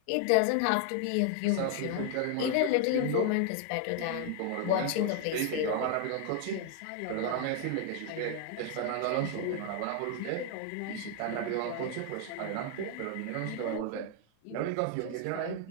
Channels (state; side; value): different; both; correlation 0.00